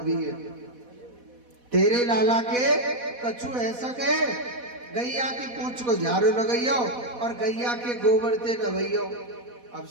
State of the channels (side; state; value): left; late; 4.1 ms